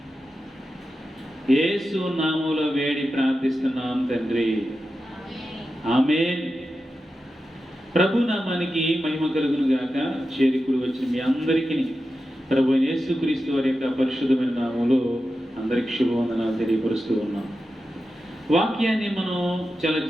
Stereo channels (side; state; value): both; normal; correlation 0.91